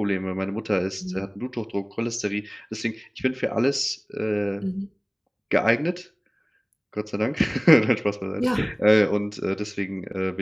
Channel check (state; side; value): identical; both; correlation 1.00